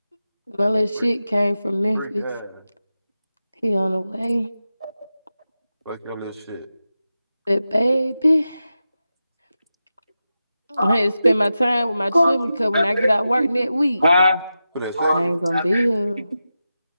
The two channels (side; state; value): both; inverted; correlation -0.91